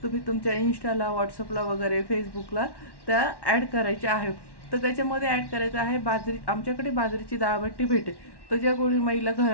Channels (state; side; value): late; right; 1.1 ms